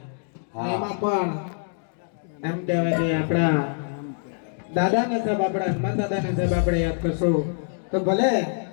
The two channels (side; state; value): right; silent; digital silence